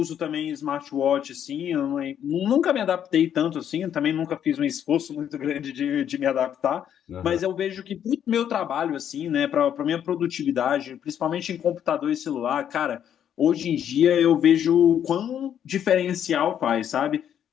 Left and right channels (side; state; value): right; quieter; 9.5 dB